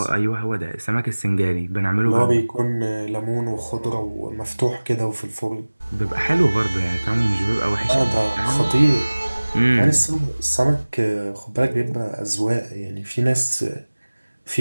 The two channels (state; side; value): inverted; both; correlation -1.00